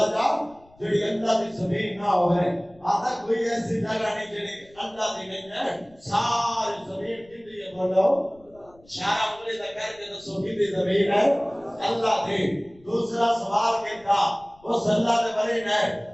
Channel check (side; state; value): left; noise; rumble, 28 dB below the sound